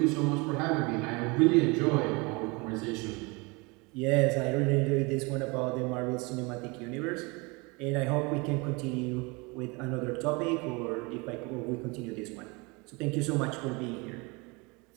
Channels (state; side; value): quieter; left; 27.6 dB